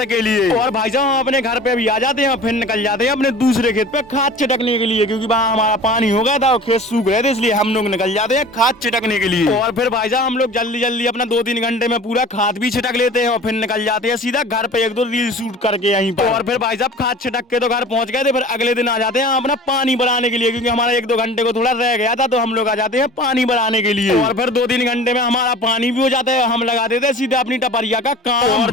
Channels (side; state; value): both; normal; correlation 0.41